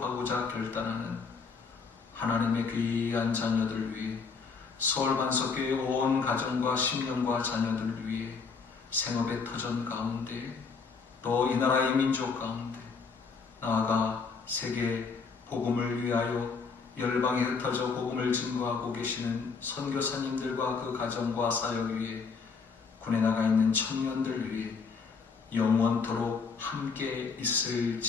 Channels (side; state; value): right; quieter; 5.1 dB